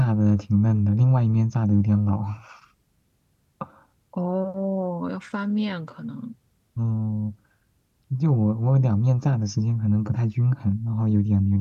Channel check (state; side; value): identical; both; correlation 1.00